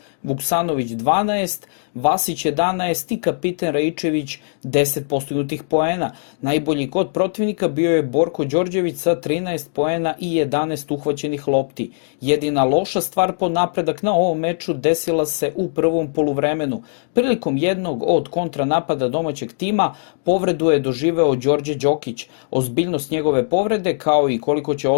Vuksanović 12, Vasić 11 i kapiten Raičević 10 postignutih poena. Najbolji kod protivnika bio je Borko Đorđević sa 13 poena i 11 uhvaćenih lopti. Jedina loša stvar po napredak na ovom meču desila se u prvom poluvremenu. Prilikom jednog od kontranapada domaćeg tima povredu je doživeo Đorđe Đokić. Ozbiljnost njegove povrede kao i koliko će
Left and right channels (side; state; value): right; silent; digital silence